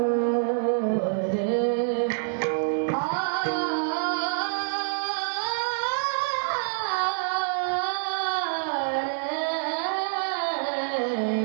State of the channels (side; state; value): left; silent; digital silence